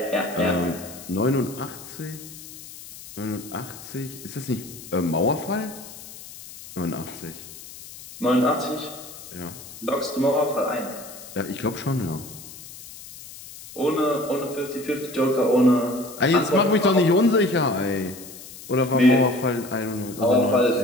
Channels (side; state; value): left; noise; hiss, 15 dB below the sound